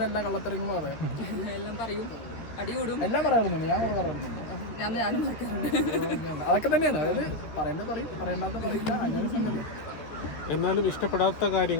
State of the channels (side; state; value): right; late; 13 ms